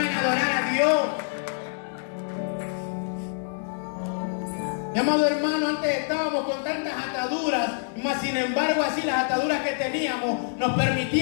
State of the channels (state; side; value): silent; right; digital silence